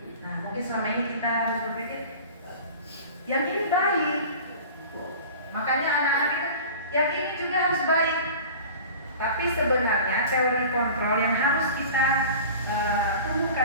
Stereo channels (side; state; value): both; inverted; correlation -0.39